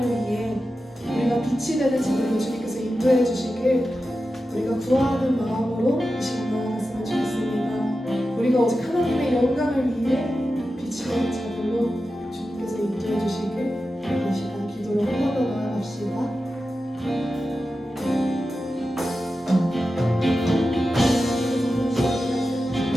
위해 우리가 빛이 되는 자들로 주님께서 인도해 주시길 우리가 구하는 마음으로 이 시간 나아갔으면 좋겠습니다. 우리가 오직 하나님의 영광을 위해 빛이 되는 자들로 주님께서 인도해 주시길 이 시간 기도로 한 번 더 나아갑시다.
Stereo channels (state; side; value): normal; both; correlation 0.92